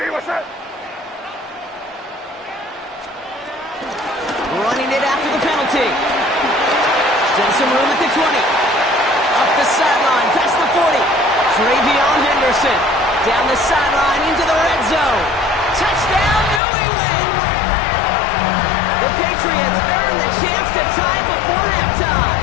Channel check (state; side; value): drops out; right; at 16.6 s